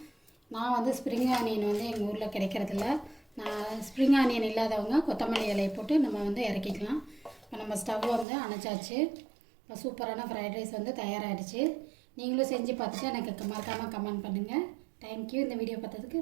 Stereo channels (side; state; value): left; drops out; at 8.2 s